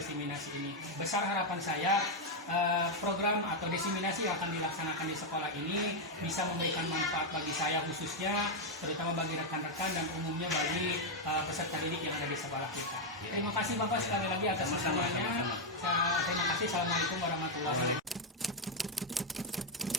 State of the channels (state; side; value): normal; both; correlation 0.01